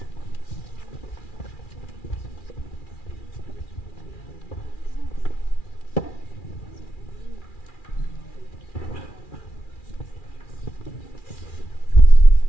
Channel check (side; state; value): right; late; 2.4 ms